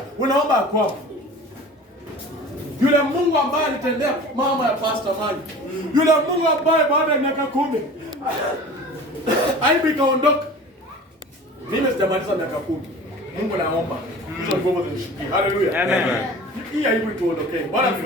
unaomba kwako. Yule Mungu ambaye alitendea mama ya Pastor Mali. Yule Mungu ambaye baada ya miaka 10 aibu ikaondoka. Mimi sijamaliza miaka 10. Mungu naomba. Hizo nguvu zinishikie. Hallelujah. Amen. Hii aibu ituondokee. Bwana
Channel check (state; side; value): normal; both; correlation 0.40